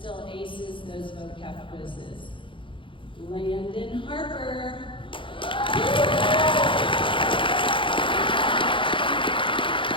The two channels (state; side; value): late; right; 0.25 ms